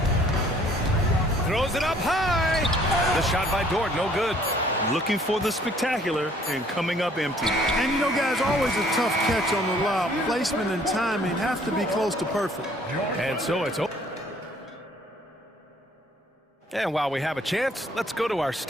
Throws it up high. The shot by Dort, no good. Looking for the spectacular and coming up empty. And you know, guys, always a tough catch on the lob. Placement and timing have to be close to perfect. And so it's open. And while we have a chance, let's go to our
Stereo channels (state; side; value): normal; both; correlation 0.59